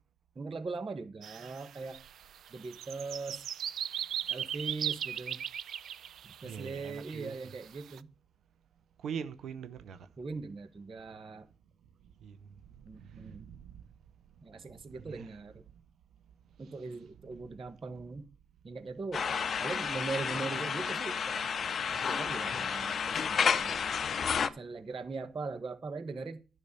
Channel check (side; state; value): both; normal; correlation 0.75